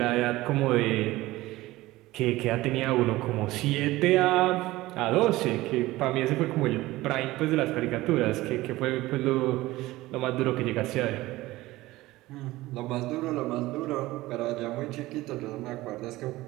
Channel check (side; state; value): left; quieter; 18.2 dB